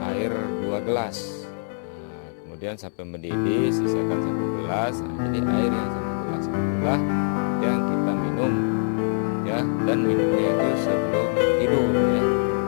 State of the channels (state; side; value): silent; right; digital silence